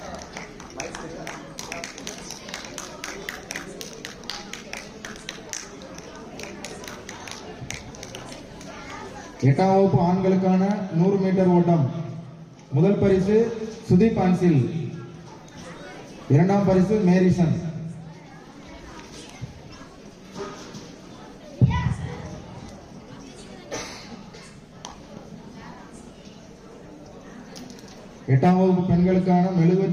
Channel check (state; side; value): identical; both; correlation 1.00